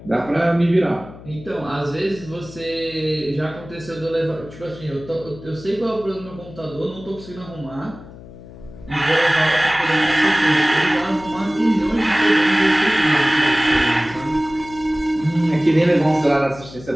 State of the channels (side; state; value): left; noise; hum, 17 dB below the sound